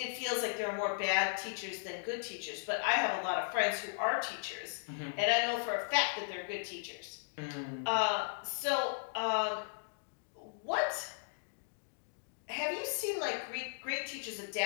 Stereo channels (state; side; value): silent; right; digital silence